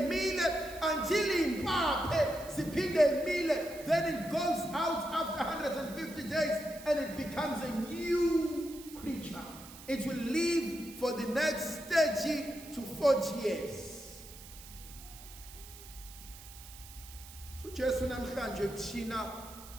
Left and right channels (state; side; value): noise; right; hiss, 17 dB below the sound